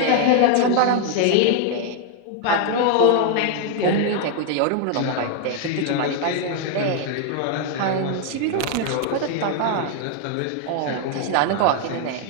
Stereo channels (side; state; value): both; different; correlation 0.00